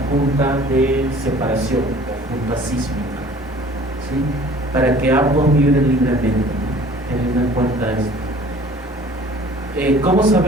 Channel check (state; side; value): normal; both; correlation 0.50